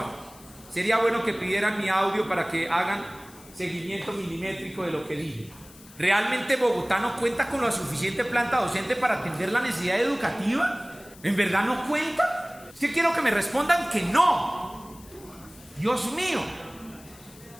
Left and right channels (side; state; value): left; noise; hiss, 22 dB below the sound